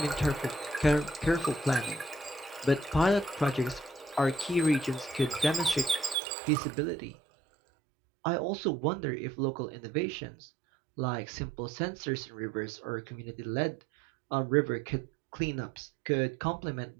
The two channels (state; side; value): drops out; left; at 6.2 s